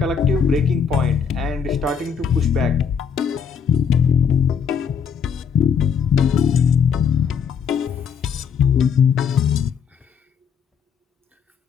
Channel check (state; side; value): quieter; right; 6.9 dB